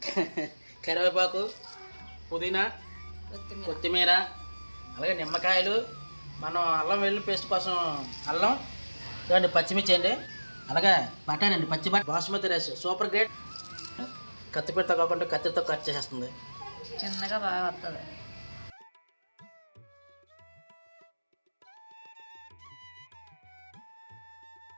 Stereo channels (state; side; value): inverted; both; correlation -1.00